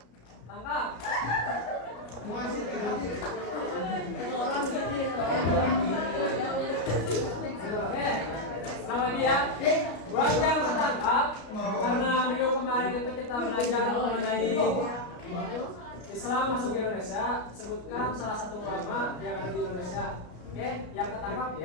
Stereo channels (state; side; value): late; right; 33 ms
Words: Tangkap. Oke. Ulang lagi ya. Buat yang tertangkap, karena minggu kemarin itu kita belajar mengenai Islam masuk ke Indonesia, sebutkan salah satu ulama yang ada di Indonesia. Oke, yang ketangkap